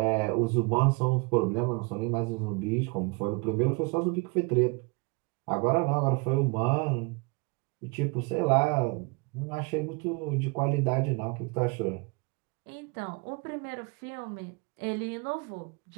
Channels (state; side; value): quieter; left; 29.3 dB